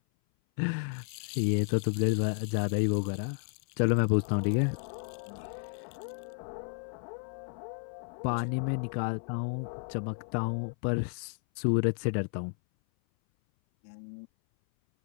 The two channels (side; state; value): right; silent; 56 dB below the other